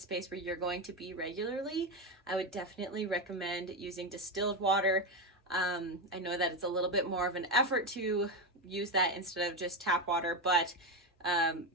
where you're going to be regularly, I would definitely recommend using distilled water. I know that it's a little bit more of an effort to use that instead of just tap water, but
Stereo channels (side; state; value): both; normal; correlation 0.12